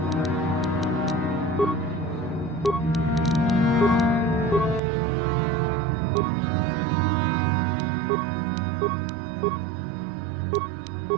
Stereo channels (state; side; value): drops out; left; at 4.8 s